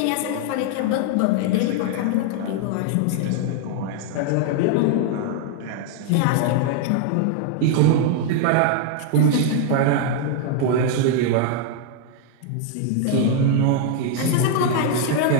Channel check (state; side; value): different; both; correlation 0.00